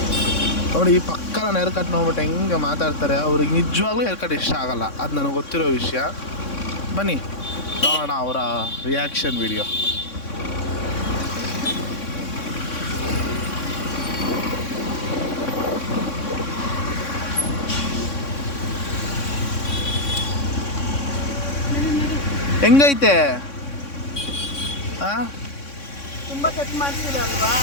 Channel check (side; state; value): right; late; 3.6 ms